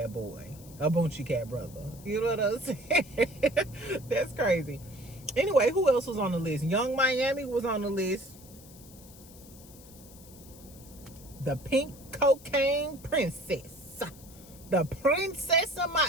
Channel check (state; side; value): noise; left; hiss, 21 dB below the sound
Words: boy, a Boonchie Cat brother. You know what I'm saying? That's crazy. Anyway, who else was on the list? Young Miami was on the list. The pink cocaine princess. The princess